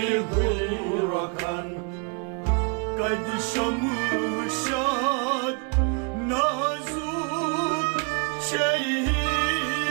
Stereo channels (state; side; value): quieter; left; 36.5 dB